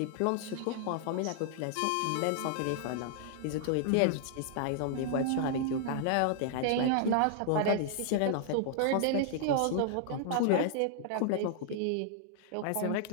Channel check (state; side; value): different; both; correlation -0.01